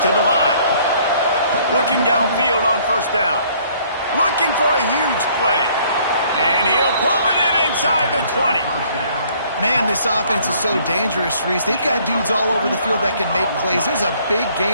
to the line. Looking downfield on first down. Looking for a huge play. And he'll pull it in inside the 20. Man, this offense is so dangerous, Reese. They've got dudes all over the field that can make plays. There's a big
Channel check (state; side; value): inverted; both; correlation -0.61